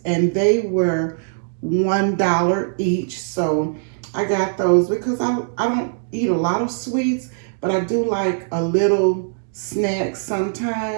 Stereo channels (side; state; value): left; silent; digital silence